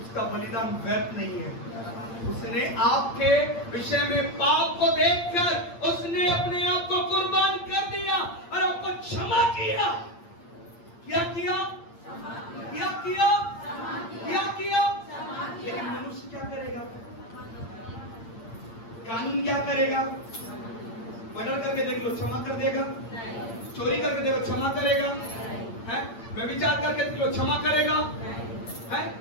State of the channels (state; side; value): late; right; 8.7 ms